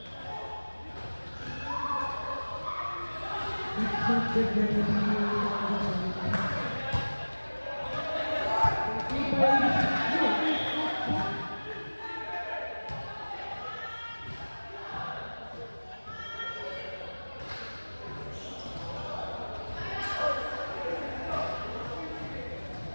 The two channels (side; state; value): both; inverted; correlation -1.00